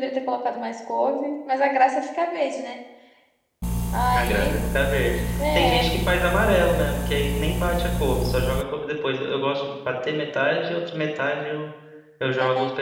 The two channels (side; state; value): both; identical; correlation 1.00